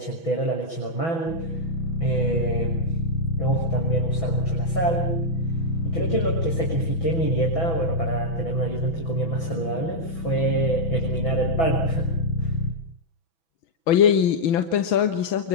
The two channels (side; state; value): right; late; 6.1 ms